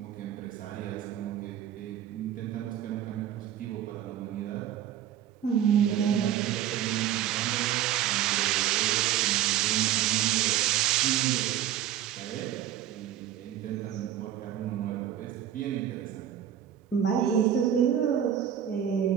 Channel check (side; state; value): left; quieter; 10.9 dB